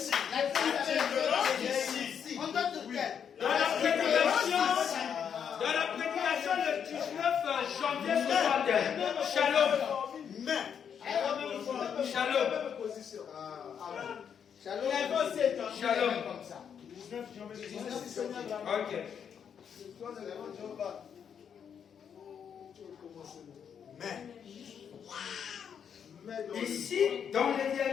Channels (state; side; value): quieter; right; 7.7 dB